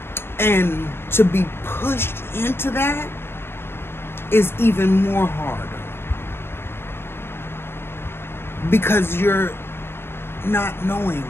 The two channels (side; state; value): right; late; 0.11 ms